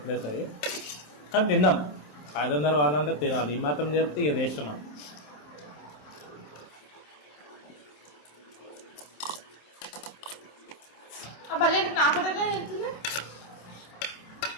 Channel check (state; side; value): late; right; 27 ms